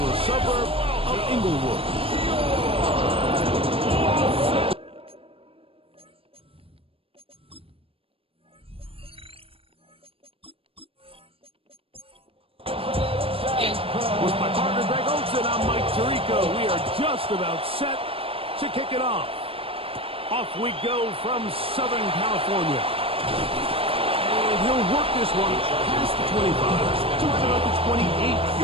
suburb of Inglewood. With my partner Greg Olson, I'm Mike Tirico. We are just about set to kick it off. Off we go from Southern California. And he'll work this one past the 25 to right about the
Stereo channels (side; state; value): left; late; 0.27 ms